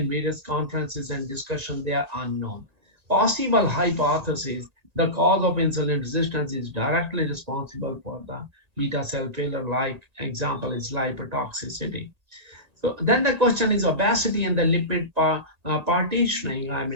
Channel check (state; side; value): late; left; 1.8 ms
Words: various conferences and discussions, they are unknown. Possible hypothesis, the cause of insulin resistance is directly responsible for the beta cell failure, like example is lipotoxicity. So then the question is obesity and the lipid partitioning. I